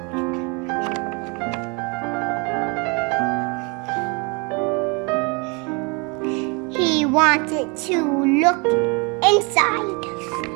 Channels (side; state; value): left; quieter; 31.1 dB